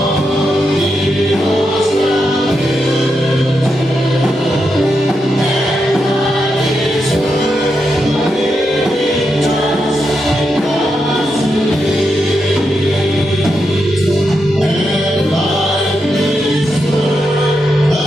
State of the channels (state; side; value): normal; both; correlation 0.85